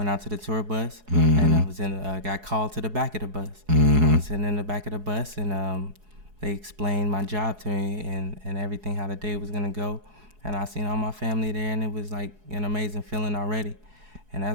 out to the tour bus, and I was got called to the back of the bus. I was sitting in the back of the bus, and they explained my job to me and everything, how the day was gonna go, and I seen all my family there, and it was like an amazing feeling already. And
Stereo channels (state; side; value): late; left; 4.7 ms